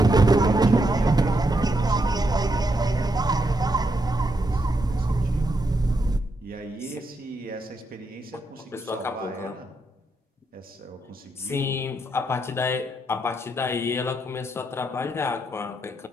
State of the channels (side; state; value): both; normal; correlation 0.80